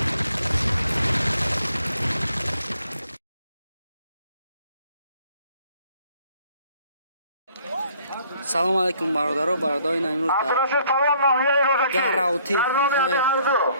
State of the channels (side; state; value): both; inverted; correlation -0.61